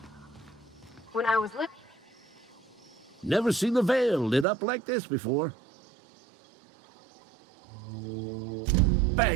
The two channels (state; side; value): drops out; left; at 4.5 s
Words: was looking. Never seen the Vale lit up like this before.